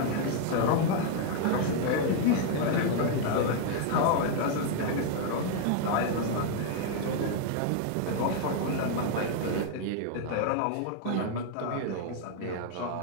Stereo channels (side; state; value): both; different; correlation 0.00